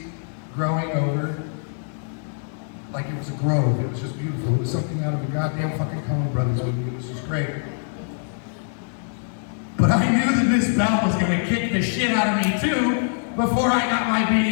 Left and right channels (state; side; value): silent; right; digital silence